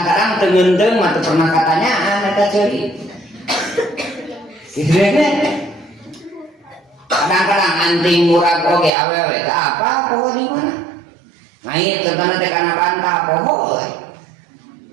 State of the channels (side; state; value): left; drops out; at 8.9 s